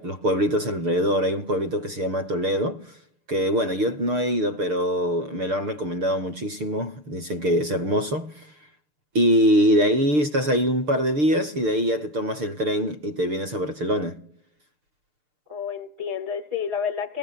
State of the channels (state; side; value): late; left; 6.7 ms